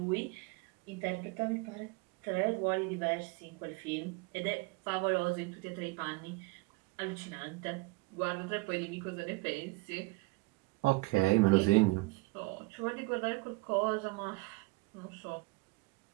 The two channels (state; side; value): quieter; left; 24.3 dB